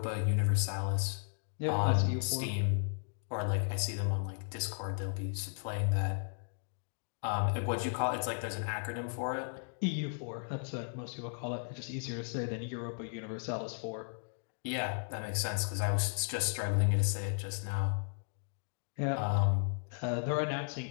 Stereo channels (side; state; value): right; silent; digital silence